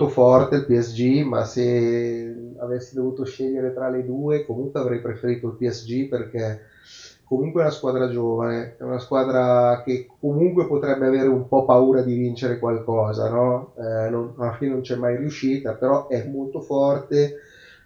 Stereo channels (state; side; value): identical; both; correlation 1.00